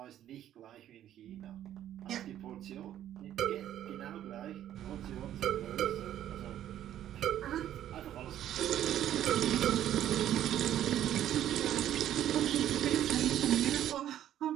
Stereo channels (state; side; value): quieter; left; 11.6 dB